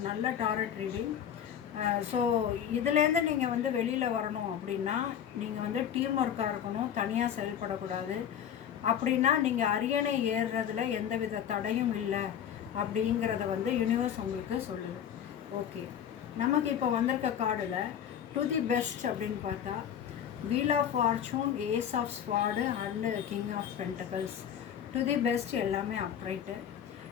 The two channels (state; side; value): quieter; right; 9.2 dB